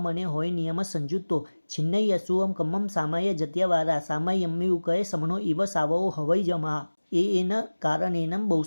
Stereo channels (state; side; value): inverted; both; correlation -1.00